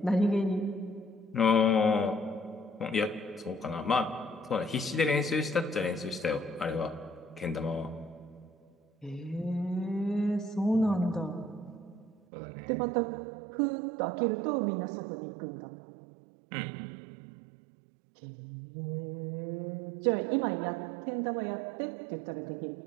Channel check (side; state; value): left; drops out; at 12.2 s